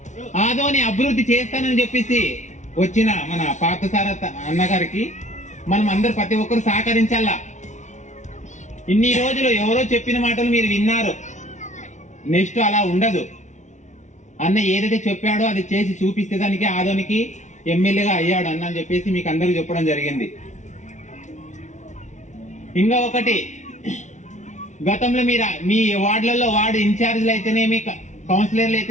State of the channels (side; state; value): right; late; 0.35 ms